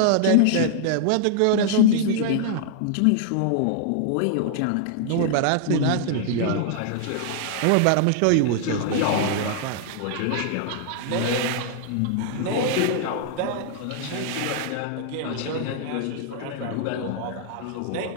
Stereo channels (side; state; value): both; different; correlation -0.01